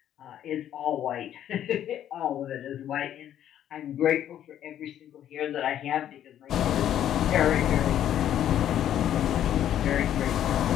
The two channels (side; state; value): right; quieter; 10.9 dB